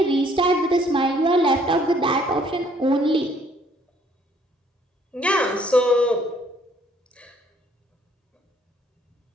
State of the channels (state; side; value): normal; both; correlation 0.63